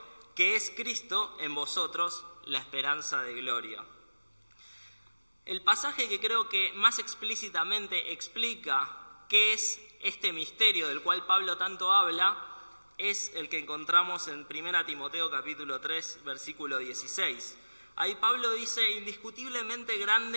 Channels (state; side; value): inverted; both; correlation -1.00